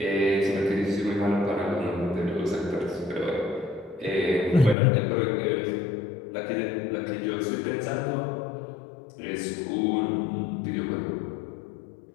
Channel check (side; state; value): right; drops out; at 4.8 s